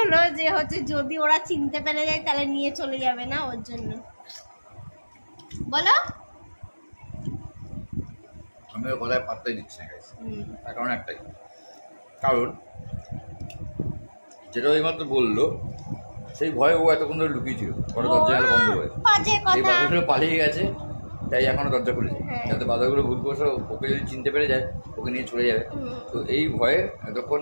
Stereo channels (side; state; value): both; inverted; correlation -1.00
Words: যে হচ্ছে যদি ওরা চিনতে পেরে যায় তাহলে নিয়ে চলে যাবে না, ওর জন্য। বলো। আমি ওর কথায় পাত্তাই দিচ্ছি না গাইস, তার কারণ একটাই, কারণ যেটা ওই মাত্র বললো সেই ভয়ে ও এতক্ষণ ধরে লুকিয়েছিল, পরে দরজা বন্ধ হয়ে এই বাদরগুলো পালিয়ে গেছে, তাই এখনো দরজা খুলেছে, যাতে বাদরগুলো ভুল করছে ওকে যদি চিনতে পেরে যায় ওকে নিয়ে চলে যাবে। তো এই ভয়ে এতক্ষণ